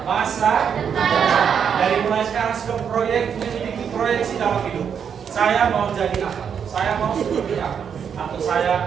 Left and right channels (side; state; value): left; quieter; 7.5 dB